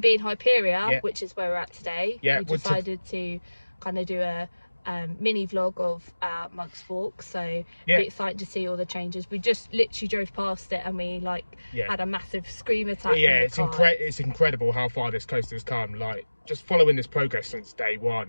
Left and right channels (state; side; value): inverted; both; correlation -1.00